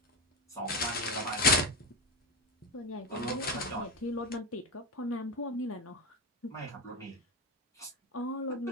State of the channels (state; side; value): normal; both; correlation 0.13